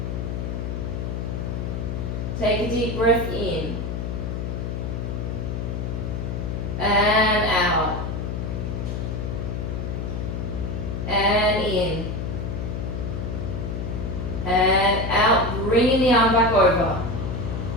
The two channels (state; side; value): noise; left; hum, 3 dB below the sound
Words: Take a deep breath in. And out. And in. And out, bringing the arm back over.